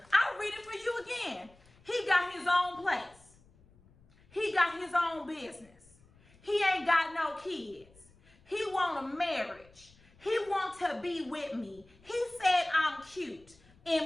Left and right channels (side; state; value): left; noise; rumble, 28 dB below the sound